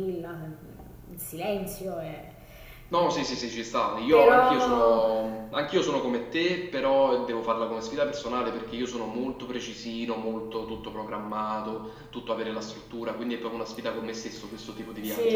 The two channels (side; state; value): both; identical; correlation 1.00